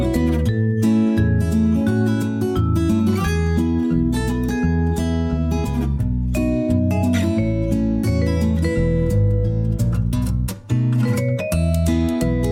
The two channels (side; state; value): both; identical; correlation 1.00